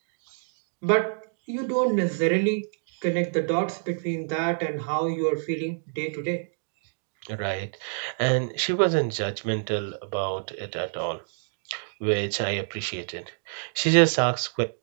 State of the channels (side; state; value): left; silent; digital silence